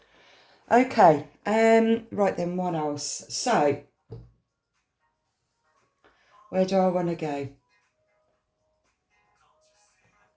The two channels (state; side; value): identical; both; correlation 1.00